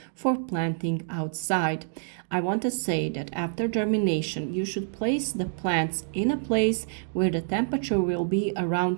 for planting outside. I want to say that after germination, you should place the plants in a place where the temperature will be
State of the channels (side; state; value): left; silent; digital silence